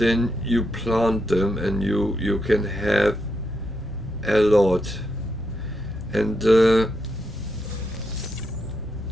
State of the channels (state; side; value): normal; both; correlation 0.82